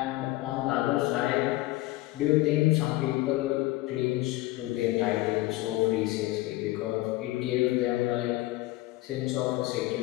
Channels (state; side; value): quieter; right; 18.5 dB